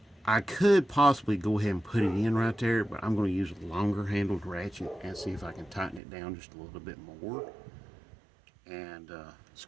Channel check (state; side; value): drops out; left; at 6.0 s